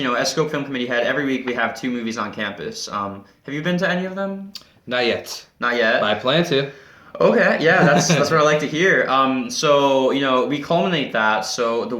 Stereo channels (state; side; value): identical; both; correlation 1.00